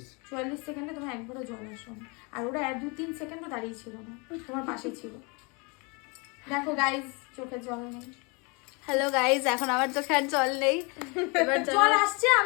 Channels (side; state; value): right; quieter; 30.4 dB